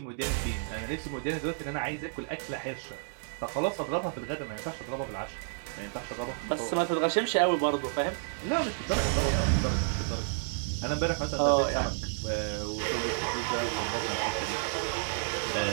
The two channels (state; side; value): silent; left; digital silence